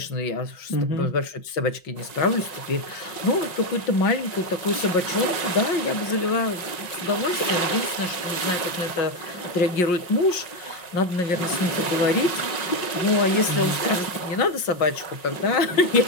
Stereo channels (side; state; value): right; late; 5.6 ms